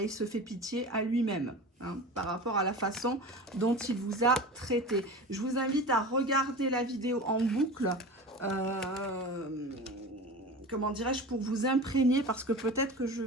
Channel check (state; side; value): normal; both; correlation 0.32